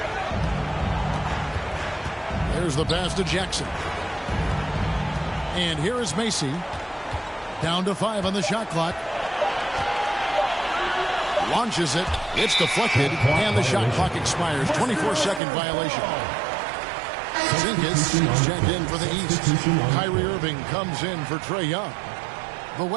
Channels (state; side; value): drops out; left; at 15.4 s